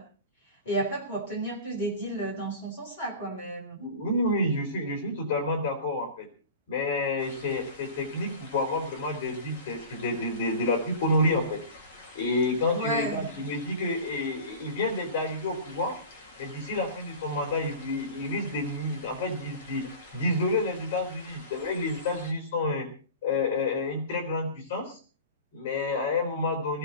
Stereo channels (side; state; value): both; inverted; correlation -0.35